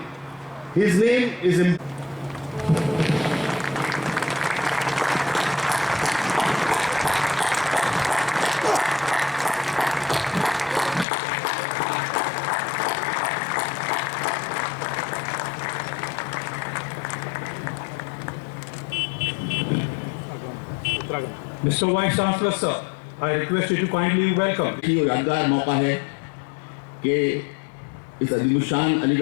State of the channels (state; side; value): drops out; right; at 11.1 s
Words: His name is Mr. Vice Chancellor, sir, I request you to kindly welcome. यादगार मौका है कि इस अजीमुशान